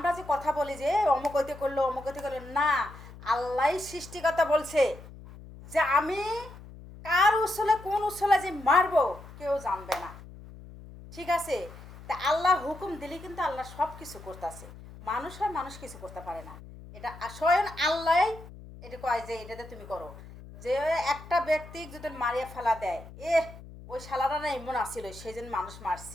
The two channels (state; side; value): noise; left; hum, 17 dB below the sound